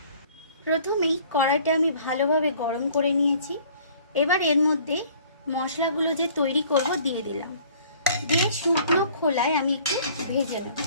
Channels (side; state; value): both; inverted; correlation -0.54